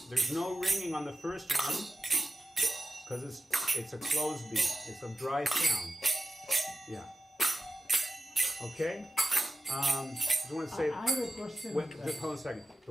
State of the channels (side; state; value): both; normal; correlation 0.94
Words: There's no ringing on the first one because it's a closed beat. It's a dry sound. Yeah. Okay. I just want to say. I have a question. Wait, just hold on a second.